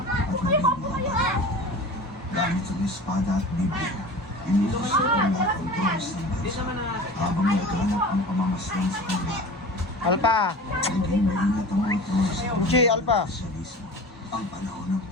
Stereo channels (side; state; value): both; normal; correlation 0.37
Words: nabibigyan. Gamit ang espada at Biblia, inutos sa ola ang Diyos ng bansa habang naghanap ang pamamasdan sa kanila. Alpa! Naging maingat ang mga Diyos sa Uchi, Alpa! Sosyalismo. Ang panahon ng